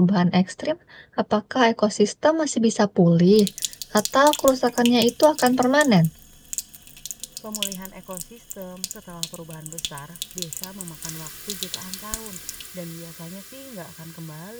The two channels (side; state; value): both; identical; correlation 1.00